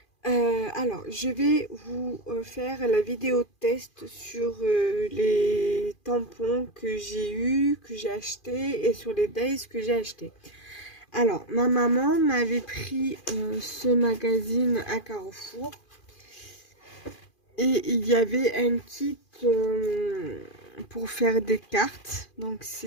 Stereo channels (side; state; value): right; late; 2.4 ms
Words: Alors je vais vous faire la vidéo test sur les tampons que j'ai eu, que j'ai acheté et sur les days que j'ai acheté. Alors ma maman m'avait pris ce magazine à Carrefour. Et il y avait un kit pour faire des cartes. Donc